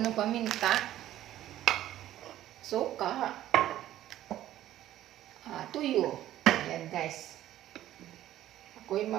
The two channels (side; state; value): left; quieter; 13.2 dB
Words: ng paminta. Suka. Tuyo. Ayan guys. Ako'y